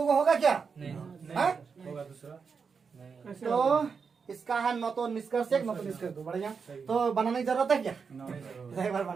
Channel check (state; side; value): quieter; left; 5.7 dB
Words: होगा क्या? नहीं होगा दूसरा। तो इसका है न तो निष्कर्ष एक, न तो निष्कर्ष दो। बढ़िया, तो बनाने की जरूरत है क्या? एक बार